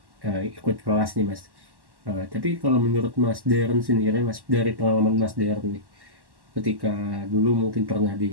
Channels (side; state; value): left; late; 1.1 ms